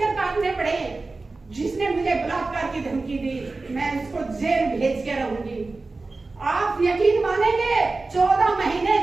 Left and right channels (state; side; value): quieter; left; 3.6 dB